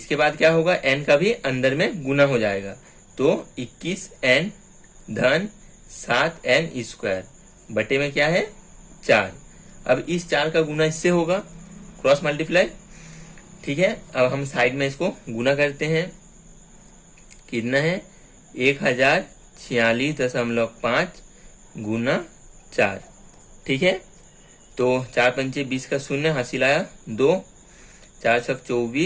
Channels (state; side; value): identical; both; correlation 1.00